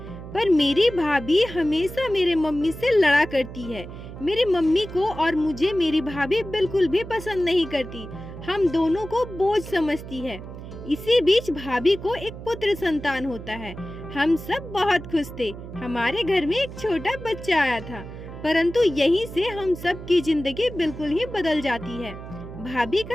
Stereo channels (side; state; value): right; noise; hum, 12 dB below the sound